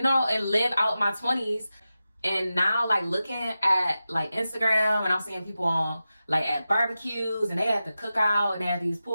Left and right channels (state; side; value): inverted; both; correlation -0.93